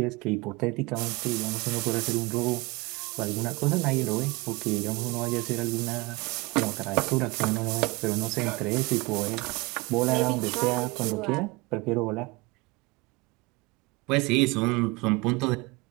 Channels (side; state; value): left; quieter; 24.3 dB